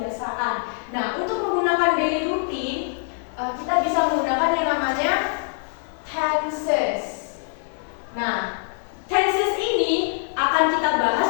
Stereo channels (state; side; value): silent; right; 63 dB below the other